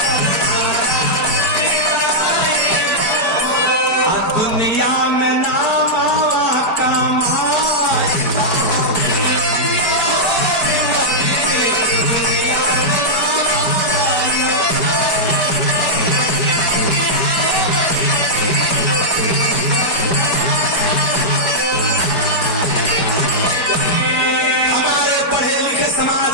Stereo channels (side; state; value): right; late; 4.7 ms